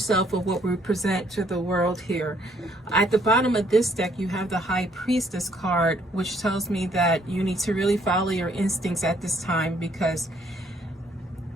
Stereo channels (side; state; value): both; normal; correlation 0.66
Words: of what we present to the world here. At the bottom of this deck, you have the High Priestess card, which tells me that you need to really follow your instincts at this time, because